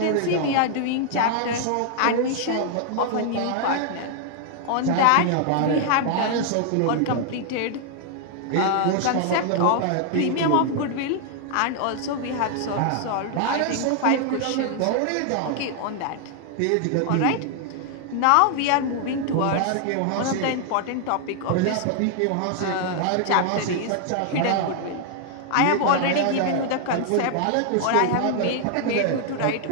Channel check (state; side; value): different; both; correlation 0.00